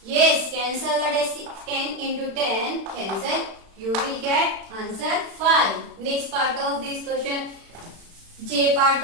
Yes, cancel the 10 into 10. Cancel. You will get answer 5. Next part of this question. J part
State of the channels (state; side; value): late; left; 36 ms